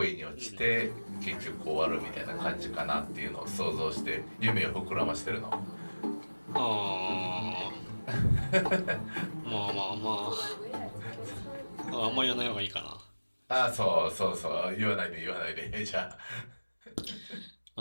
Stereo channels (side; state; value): both; inverted; correlation -1.00